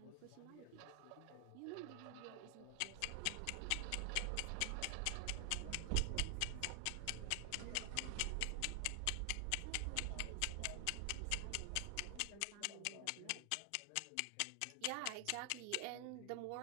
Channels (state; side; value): different; both; correlation 0.00